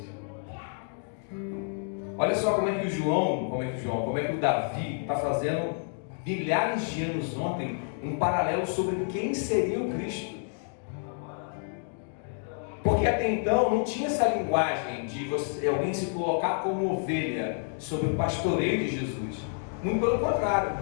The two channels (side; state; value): right; silent; 58 dB below the other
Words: Olha só como é que o Davi está fazendo milhares de anos ontem um paralelo sobre quem seria o Cristo. Porque até então não tinha essa linguagem de alguém se colocar como ovelha sobre o pastoreio de Jesus. Muito pelo contrário,